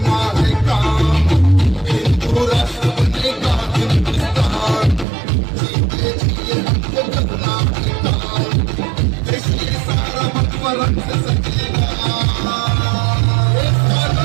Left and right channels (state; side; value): drops out; left; at 5.1 s